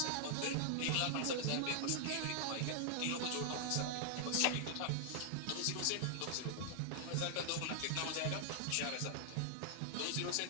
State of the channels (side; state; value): both; different; correlation 0.00